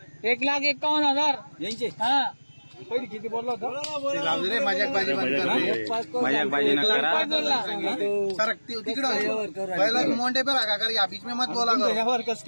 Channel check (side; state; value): both; inverted; correlation -1.00